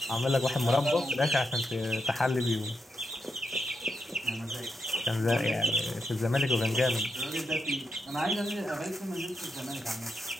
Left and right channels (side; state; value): both; normal; correlation 0.84